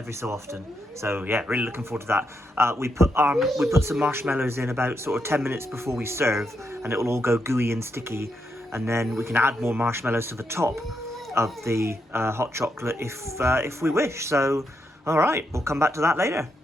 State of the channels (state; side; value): normal; both; correlation 0.81